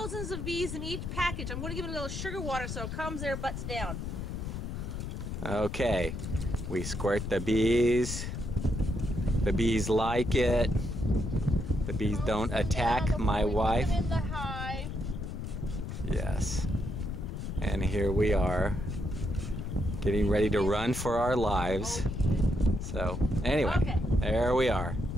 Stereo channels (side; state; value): left; noise; rumble, 5 dB below the sound